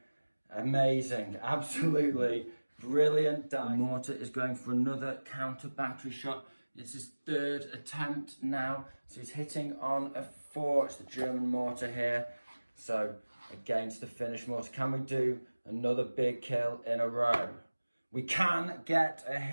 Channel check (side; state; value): both; inverted; correlation -1.00